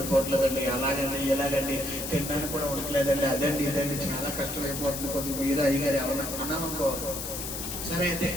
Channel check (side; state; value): left; noise; hiss, 6 dB below the sound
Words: ఎలాగండి తినడానికి కూడా ఉండట్లేదండి, అదండి ఇదండి చాలా కష్టమైపోతుంది, కొద్దిగా మీరు అయ్యగారు ఎవరన్నా అన్నామనుకో, సరే అయితే